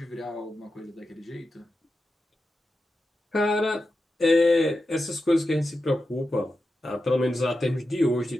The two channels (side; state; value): both; normal; correlation 0.90